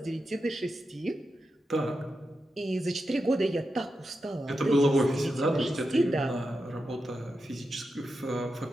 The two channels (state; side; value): normal; both; correlation 0.88